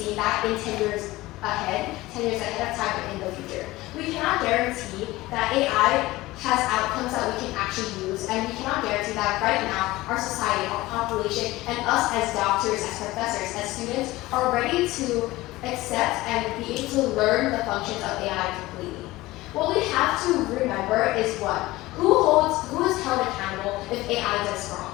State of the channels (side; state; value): right; quieter; 18.7 dB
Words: that in 10 years ahead of time in the future? We cannot guarantee that AI has outcomes that we can actually use, and we cannot guarantee that right now our society, our population, and us as doctors, as professors, as students are ready to accept and be able to learn the functions of AI completely. What we have to remember is what? Who is held accountable if AI does wrong?